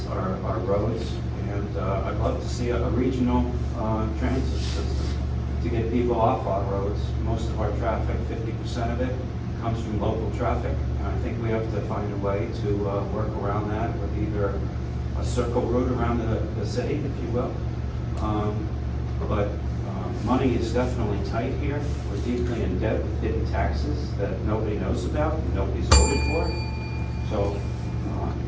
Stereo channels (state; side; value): identical; both; correlation 1.00